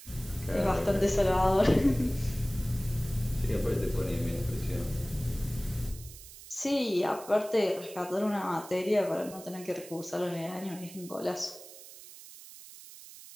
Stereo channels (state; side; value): noise; right; hiss, 17 dB below the sound